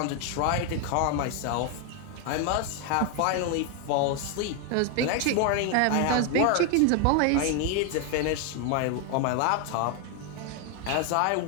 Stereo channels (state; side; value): different; both; correlation 0.01